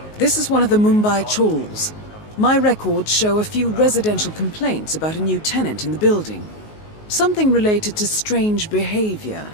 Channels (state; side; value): late; right; 19 ms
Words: This is one of the Mumbai chawls. My records show a few residential complaints about a new tenant in the building. Something related to strange behavior.